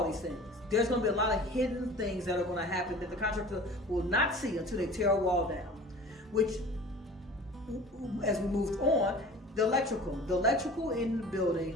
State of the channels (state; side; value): normal; both; correlation 0.42